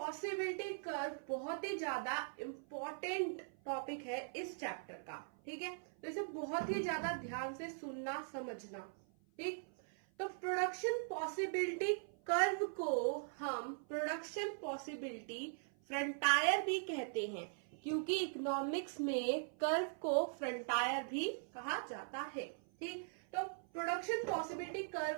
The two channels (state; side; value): silent; left; 51 dB below the other